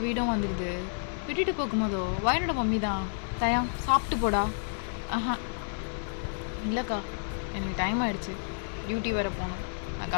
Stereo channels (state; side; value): silent; right; 58 dB below the other